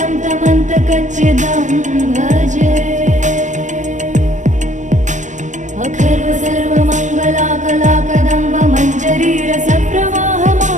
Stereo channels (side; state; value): left; late; 0.35 ms